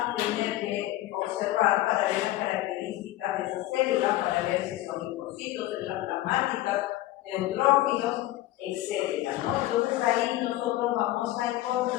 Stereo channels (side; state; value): right; quieter; 15.7 dB